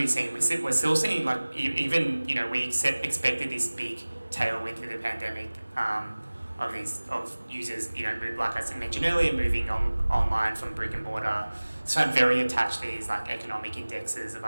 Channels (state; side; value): inverted; both; correlation -1.00